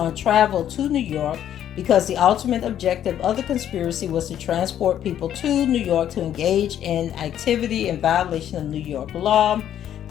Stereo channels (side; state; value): right; quieter; 10.6 dB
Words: travel to New York because the ultimate objective of the conspiracy was to transport people to New York to engage in activity in violation of New York law.